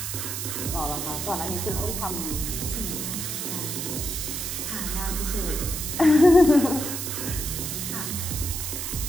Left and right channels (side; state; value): right; noise; hiss, 4 dB below the sound